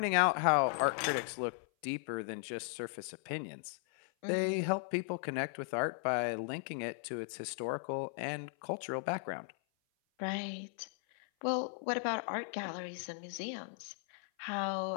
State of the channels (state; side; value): silent; right; 53 dB below the other